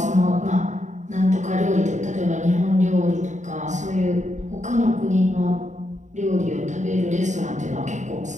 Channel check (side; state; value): left; late; 0.35 ms